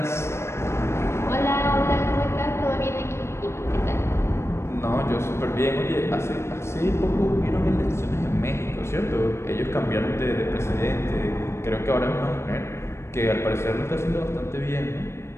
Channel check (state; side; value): late; right; 0.13 ms